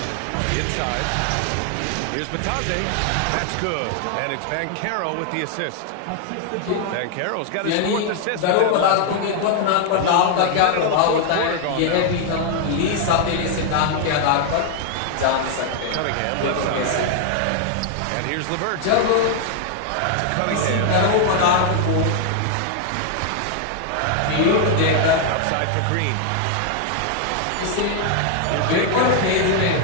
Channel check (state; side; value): different; both; correlation 0.00